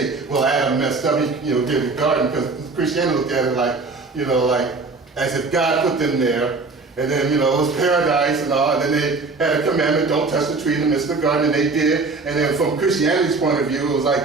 well, Adam messed up, he did the garden, because Christianity looked at it like as if God put them there, and then, it was paradise and all, and then they had a commandment, don't touch the tree in the midst of the garden, and they did. And then from Christianity's point of view, it was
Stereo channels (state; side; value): quieter; left; 3.9 dB